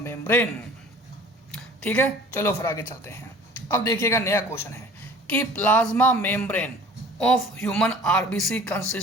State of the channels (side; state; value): both; normal; correlation 0.46